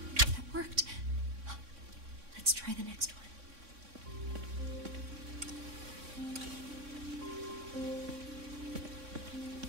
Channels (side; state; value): left; late; 3.6 ms